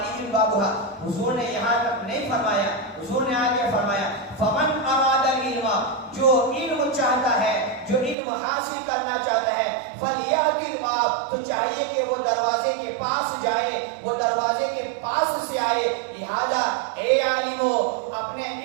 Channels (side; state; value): left; drops out; at 8.2 s